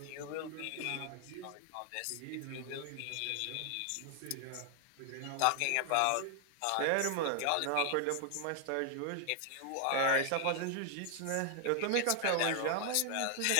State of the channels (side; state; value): both; different; correlation 0.00